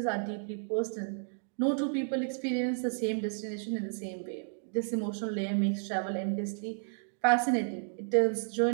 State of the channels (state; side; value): silent; left; digital silence